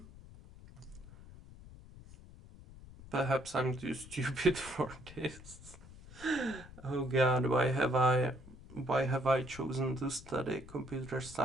Perhaps I'm too stupid for this. Oh god, why have I chosen to study computer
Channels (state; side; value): noise; left; rumble, 18 dB below the sound